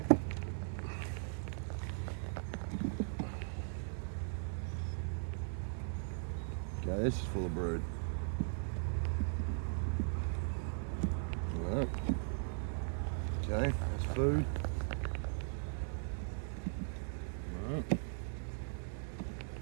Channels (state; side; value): silent; left; digital silence